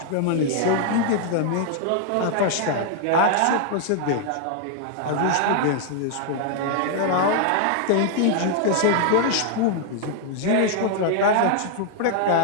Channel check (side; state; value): both; different; correlation 0.00